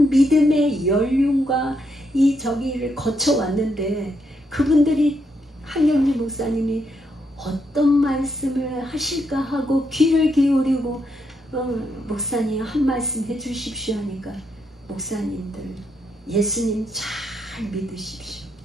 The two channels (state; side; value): normal; both; correlation 0.78